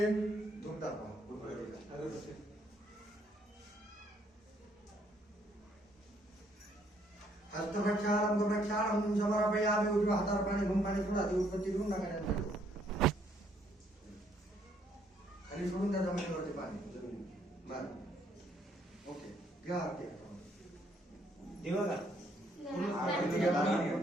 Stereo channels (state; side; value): normal; both; correlation 0.68